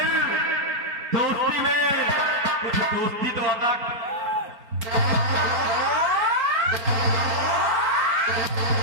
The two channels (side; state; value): left; late; 4.4 ms